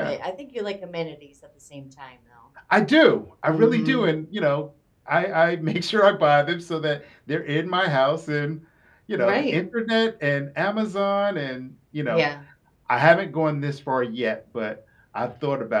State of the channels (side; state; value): both; identical; correlation 1.00